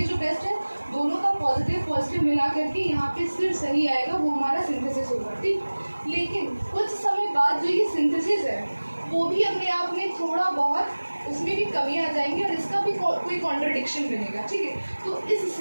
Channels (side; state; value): both; inverted; correlation -1.00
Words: जो बेस्ट है दोनों का पॉजिटिव मिला करके यहाँ पे सिर्फ सही आएगा, वो हमारा सिंथेसिस होगा, ठीक। लेकिन कुछ समय बाद जो ये सिंथेसिस है वो भी अपने आप में थोड़ा बहुत उसमें भी कमी आ जाएंगी और इसका भी कोई कॉन्ट्रडिक्शन बनेगा, ठीक है। तो इस